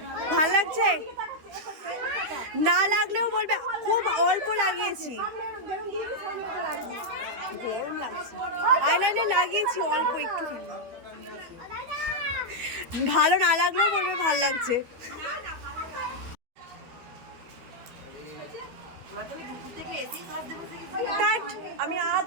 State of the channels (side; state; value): left; late; 13 ms